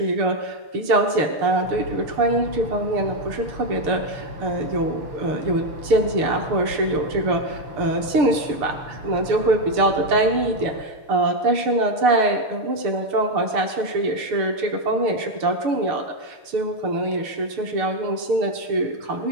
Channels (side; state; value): left; late; 6.8 ms